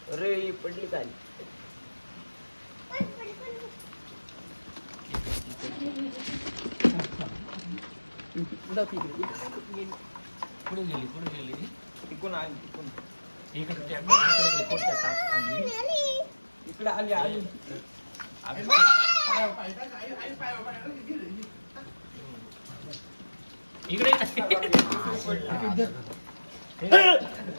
अरे ही पडली काय. पुढे गेली तिकून आली तिकून. इकडे त्या कोणत्या टाक आली. इकडे आली आली. इकडे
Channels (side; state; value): both; inverted; correlation -1.00